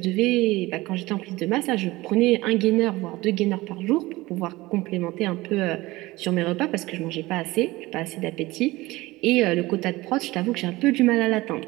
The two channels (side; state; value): left; quieter; 19.9 dB